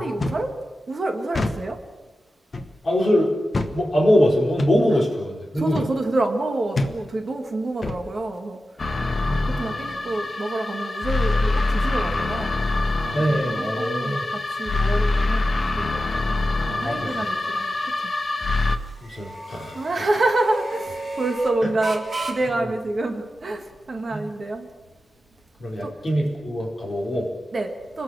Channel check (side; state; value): both; normal; correlation 0.92